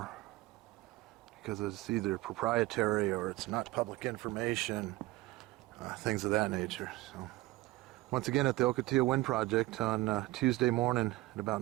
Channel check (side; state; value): left; quieter; 19.2 dB